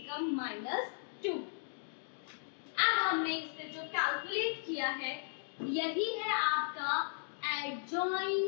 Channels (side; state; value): right; silent; digital silence